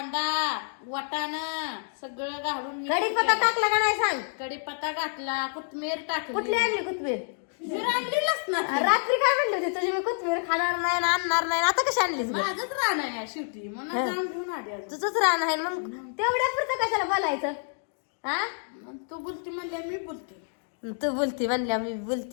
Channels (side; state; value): right; silent; digital silence